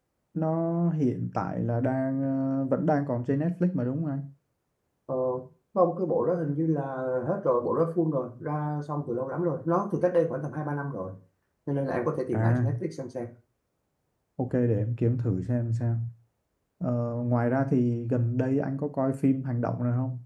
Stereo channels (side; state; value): both; identical; correlation 1.00